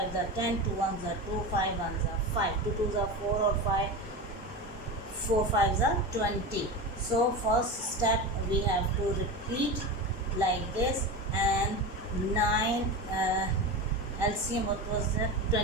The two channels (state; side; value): normal; both; correlation 0.24